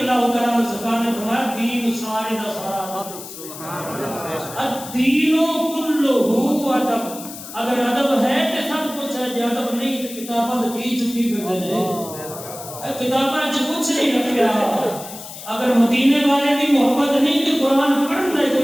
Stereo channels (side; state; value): left; noise; hiss, 13 dB below the sound